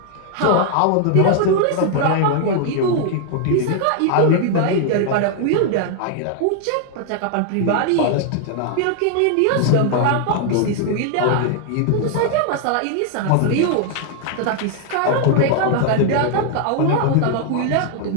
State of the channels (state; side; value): different; both; correlation 0.00